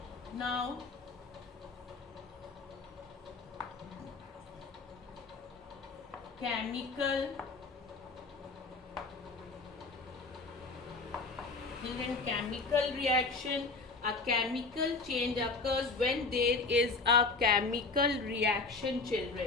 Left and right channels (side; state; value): right; quieter; 4.0 dB